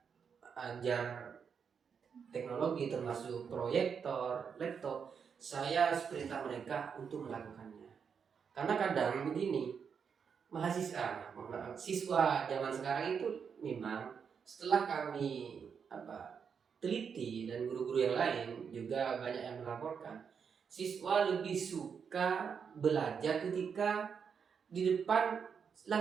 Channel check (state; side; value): quieter; left; 6.6 dB